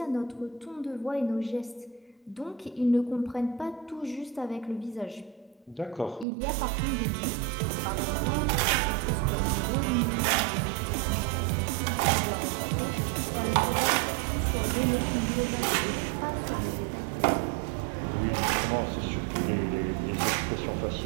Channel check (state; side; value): drops out; left; at 6.2 s